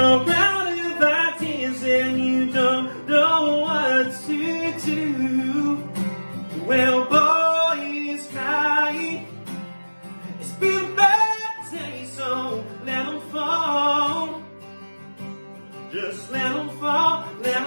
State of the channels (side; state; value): both; inverted; correlation -1.00